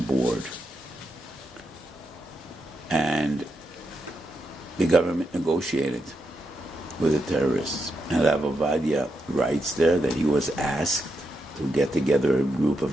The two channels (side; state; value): both; normal; correlation 0.83